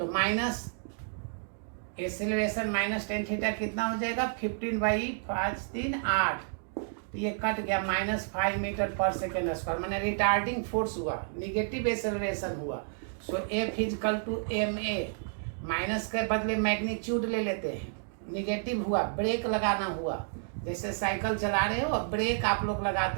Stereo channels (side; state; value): left; silent; digital silence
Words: माइनस एसिलरेशन -tan थीटा कितना हो जाएगा? 15/5 3 8। तो ये कट गया -5 मीटर पर सेकेंड स्क्वायर, मैंने रिटार्डिंग फोर्स हुआ, निगेटिव एसिलरेशन हुआ। So F is equal to ma, minus के बदले मैग्नीट्यूड ले लेते हैं, निगेटिव हुआ, ब्रेक लगाना हुआ। जैसे साइकिल चला रहे हो और ब्रेक आप लोग